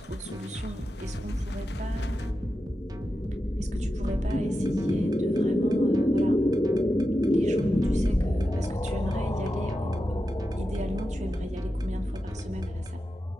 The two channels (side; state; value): both; normal; correlation 0.90